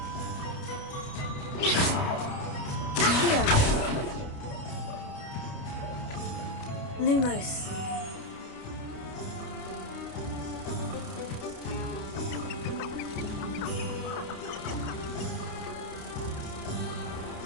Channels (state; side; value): late; right; 29 ms